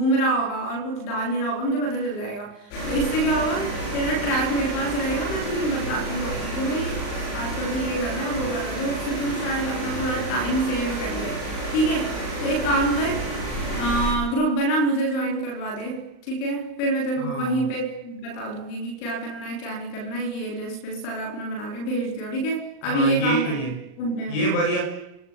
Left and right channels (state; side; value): late; right; 39 ms